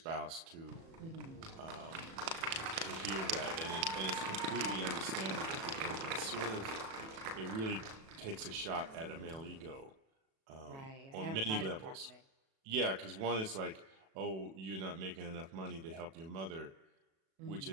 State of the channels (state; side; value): late; left; 37 ms